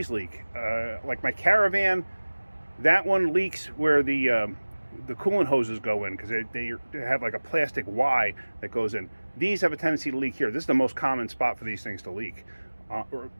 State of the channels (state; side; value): inverted; both; correlation -1.00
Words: leak. Like my Caravan, that one leaks where the coolant hoses go in, because they have like a plastic Y that goes in. These have a tendency to leak here. This is the most common spot for these things to leak, or